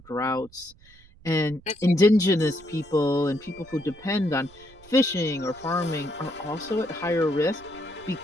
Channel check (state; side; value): noise; right; rumble, 25 dB below the sound